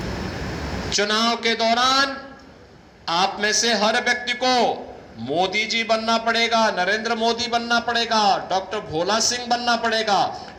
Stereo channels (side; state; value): both; identical; correlation 1.00